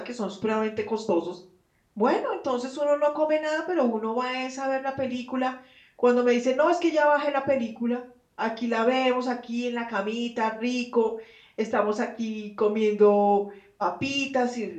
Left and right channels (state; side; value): identical; both; correlation 1.00